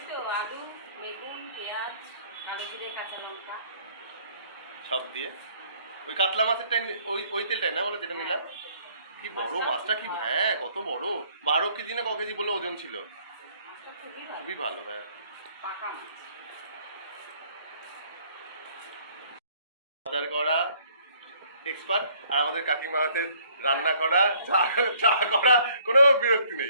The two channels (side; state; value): both; inverted; correlation -0.61